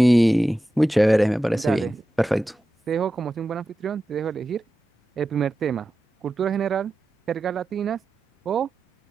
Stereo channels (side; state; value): both; normal; correlation 0.93